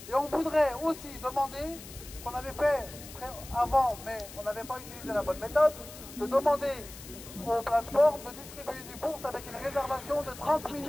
Et on voudrait aussi demander, qu'on avait fait avant, mais on n'avait pas utilisé la bonne méthode, de demander aux plateformes de distribuer des bourses avec une réservation de 30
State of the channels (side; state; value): left; noise; hiss, 15 dB below the sound